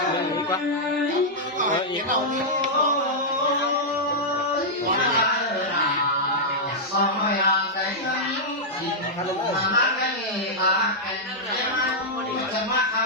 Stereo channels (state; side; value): normal; both; correlation -0.08